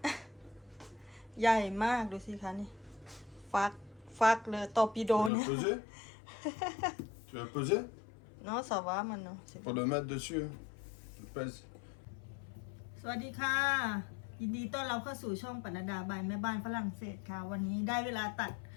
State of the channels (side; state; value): right; drops out; at 5.3 s